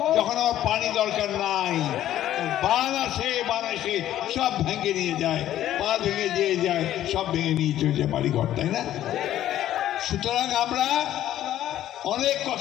যখন আমার পানি দরকার নাই। বান আসে, বান এসে সব ভেঙে নিয়ে যায়, বাঁধ ভেঙে দিয়ে যায়, সব ভেঙে নিয়ে চলে যায় বাড়িঘর, তাই না? সুতরাং আমরা অনেক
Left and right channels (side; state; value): right; quieter; 12.5 dB